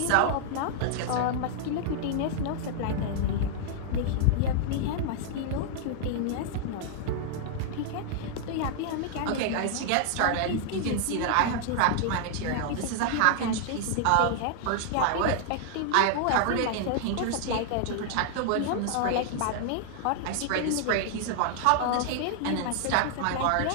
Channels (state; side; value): different; both; correlation -0.01